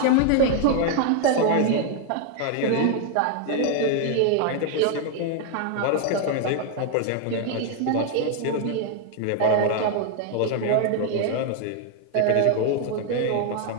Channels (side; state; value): both; different; correlation 0.00